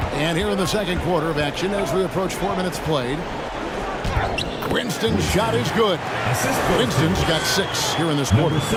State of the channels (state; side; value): identical; both; correlation 1.00